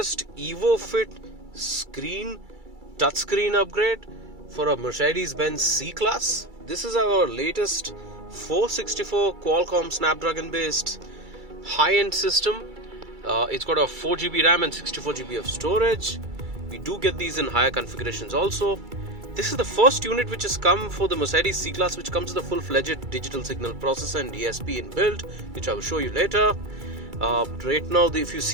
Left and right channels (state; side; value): late; left; 2.3 ms